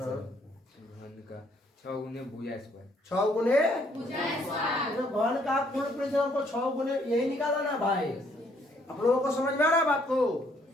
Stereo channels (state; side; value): normal; both; correlation 0.67